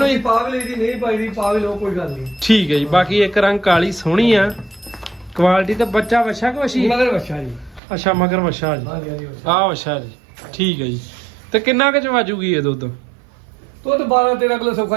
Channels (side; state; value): left; drops out; at 7.8 s